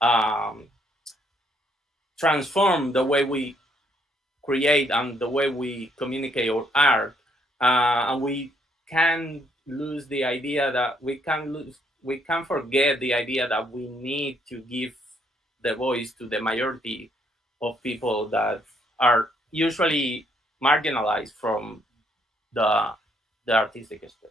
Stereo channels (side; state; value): both; normal; correlation 0.70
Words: transform the way we create and the way we communicate our art, and we can lose the idea that we can forget the idea that we need to give the voice to the majority of people that are usually marginalized from the artistic